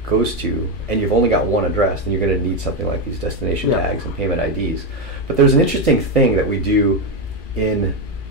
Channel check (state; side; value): late; right; 1.6 ms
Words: goes to, and you've only got one address, then you're going to need something like these destination tags and payment IDs. But there's an interesting thing that we do in